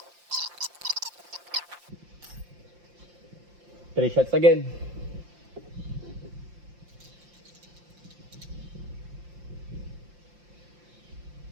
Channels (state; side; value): late; left; 5.7 ms